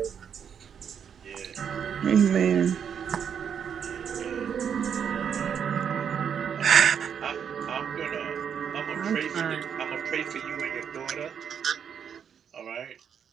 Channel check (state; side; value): quieter; left; 7.7 dB